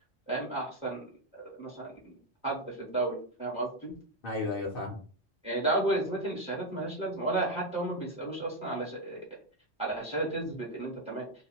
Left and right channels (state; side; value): normal; both; correlation 0.04